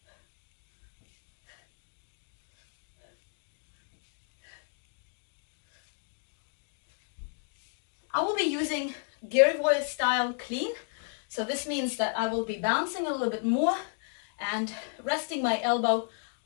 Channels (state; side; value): silent; right; 56 dB below the other